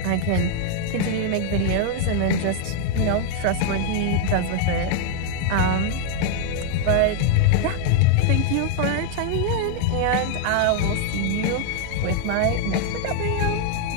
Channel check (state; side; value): different; both; correlation 0.00